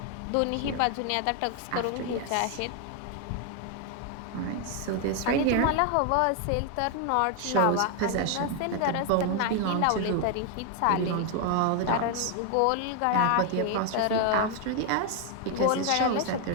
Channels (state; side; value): different; both; correlation 0.01